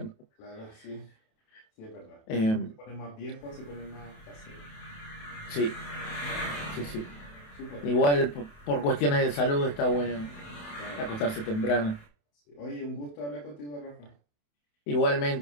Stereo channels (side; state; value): right; late; 28 ms